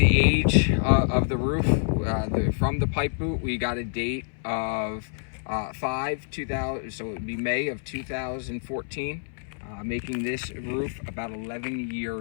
age of the roof. From the pipe boot, we got a date of 5/2000, so it would be May of 2014, making this roof about 11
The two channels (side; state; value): right; silent; 60 dB below the other